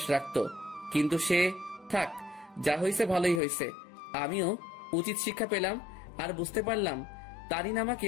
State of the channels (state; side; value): drops out; right; at 3.4 s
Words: রাখতো। কিন্তু সে থাক, যা হয়েছে ভালোই হয়েছে। আমিও উচিত শিক্ষা পেলাম আর বুঝতে পারলাম তারিন আমাকে